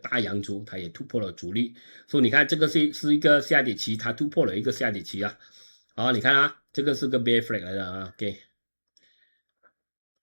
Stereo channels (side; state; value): both; inverted; correlation -1.00